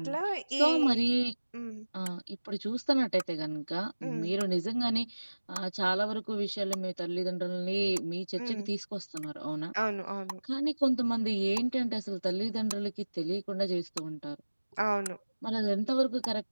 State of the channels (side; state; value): both; inverted; correlation -1.00